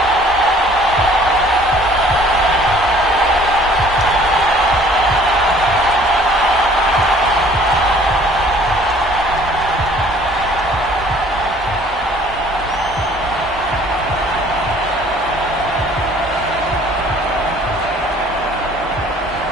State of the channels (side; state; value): both; normal; correlation 0.55